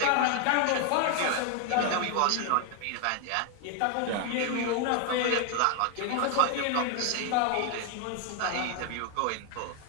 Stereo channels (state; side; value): different; both; correlation 0.00